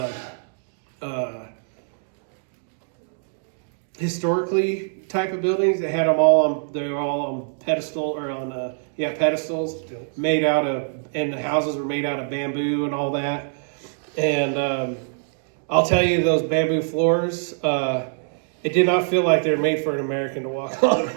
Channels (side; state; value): left; silent; digital silence